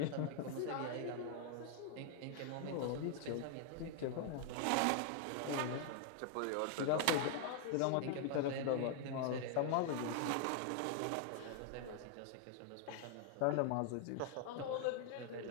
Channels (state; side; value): different; both; correlation 0.00